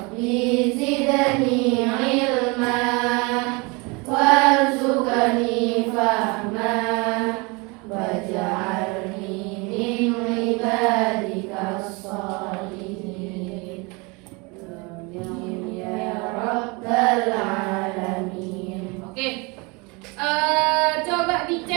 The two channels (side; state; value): left; quieter; 28.2 dB